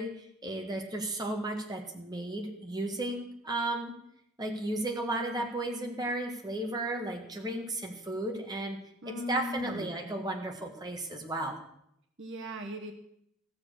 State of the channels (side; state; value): both; normal; correlation 0.48